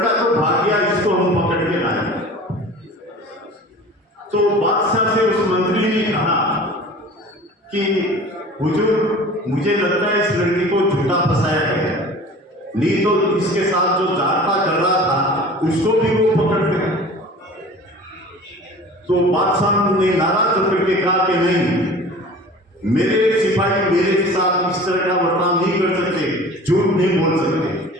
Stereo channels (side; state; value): both; normal; correlation 0.41